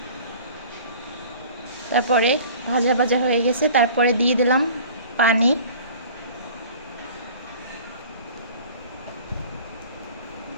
তারপরে ভাজা ভাজা হয়ে গেছে। তারপরে দিয়ে দিলাম পানি।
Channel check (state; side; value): inverted; both; correlation -0.45